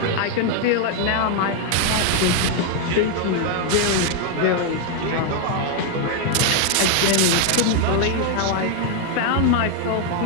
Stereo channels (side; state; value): both; different; correlation 0.00